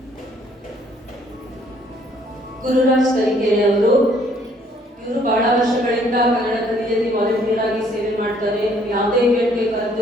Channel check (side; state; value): both; normal; correlation 0.63